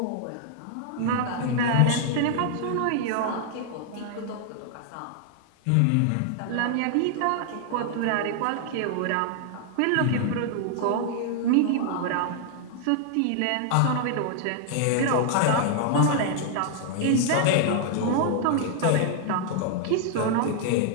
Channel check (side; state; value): both; different; correlation 0.00